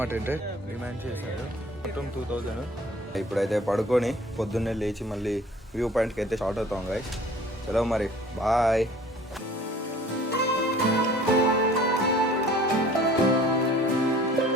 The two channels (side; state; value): both; normal; correlation 0.50